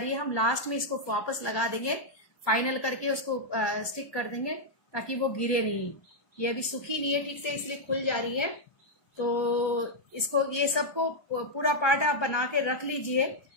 है. हम लास्ट में इसको वापस लगा देंगे, फाइनल करके उसको स्टिक कर देंगे ताकि वो गिरे नहीं. ये अभी सूखी नहीं है ठीक से, इसलिए खुल जा रही है. तो इसको ये सबको पूरा पार्ट आप बना के रख लीजिए.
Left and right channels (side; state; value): right; late; 1.2 ms